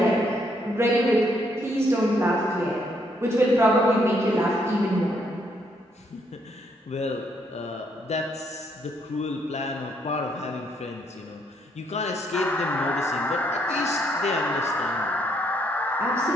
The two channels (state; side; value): normal; both; correlation 0.71